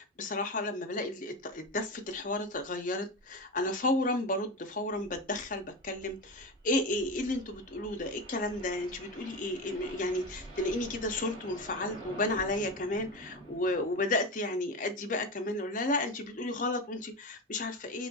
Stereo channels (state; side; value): normal; both; correlation 0.21